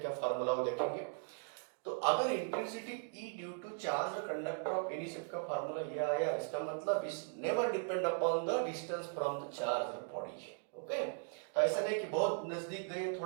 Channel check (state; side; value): silent; left; 52 dB below the other